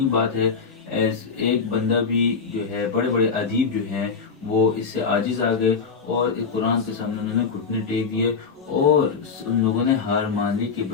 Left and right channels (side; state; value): right; quieter; 5.4 dB